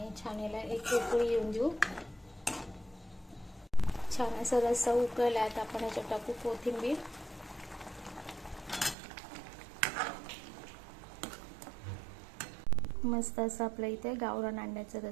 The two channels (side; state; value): left; drops out; at 9.0 s